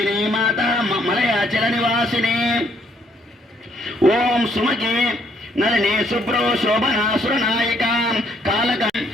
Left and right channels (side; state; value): both; normal; correlation 0.68